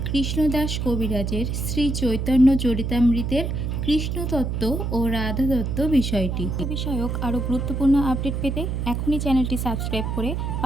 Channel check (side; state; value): right; noise; hum, 2 dB below the sound